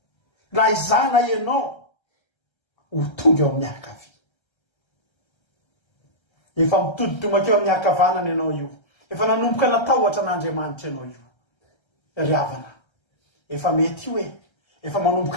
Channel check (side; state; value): right; late; 1.3 ms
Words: raha izana ianao ho tonga eo amin'ny akavy. Efa mitoditomaka eo amin'ny akavanana ianao io, efa nanomboka natahotra an'Andriamanitra ianao io. Ry havana, efa mety io efa